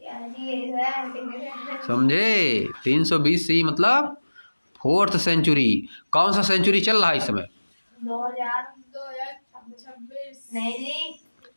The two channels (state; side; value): inverted; both; correlation -1.00